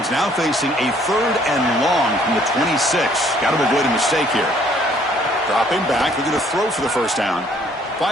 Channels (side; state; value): both; normal; correlation 0.62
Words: now facing a 3rd and long from the 26. Got to avoid a mistake here. Dropping back. They're going to throw for the 1st down.